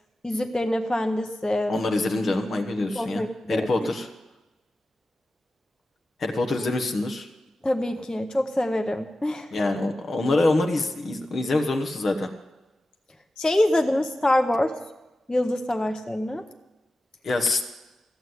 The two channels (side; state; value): both; normal; correlation 0.93